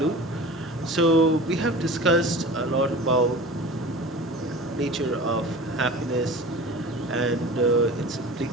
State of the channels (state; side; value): normal; both; correlation 0.37